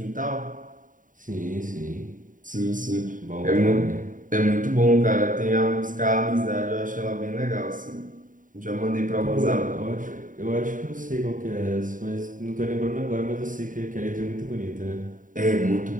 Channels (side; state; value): left; late; 0.38 ms